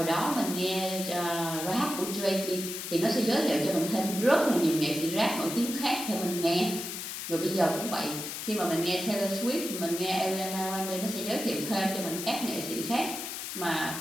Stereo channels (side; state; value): left; noise; hiss, 6 dB below the sound